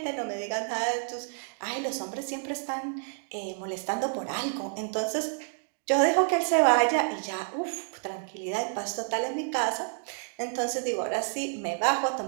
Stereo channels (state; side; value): silent; left; digital silence